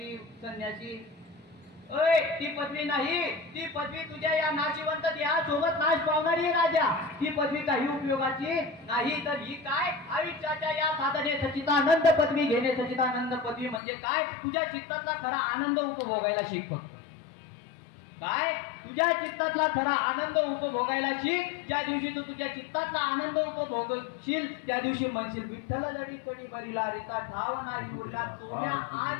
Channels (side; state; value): right; drops out; at 13.8 s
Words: संन्यासी, ती पदवी नाही. ती पदवी तुझ्या या नाशिवंत देहासोबत नाश पावणारी आहे राजा. ती पदवी काही उपयोगाची नाही. तर ही काय, आयुष्याच्या या साधने सच्चिदानंद पदवी घेणे. सच्चिदानंद पदवी म्हणजे काय, तुझ्या चित्ताचा खरा आनंद उपभोगायला शिक. फक्त काय, तुझ्या चित्तातला खरा आनंद उपभोगायला शिक. ज्या दिवशी तू तुझ्या चित्तातला आनंद उपभोगशील त्या दिवशी म्हणशील विठ्ठल जडी कडी बरीला रीता ठाव नाही उरला सोन्या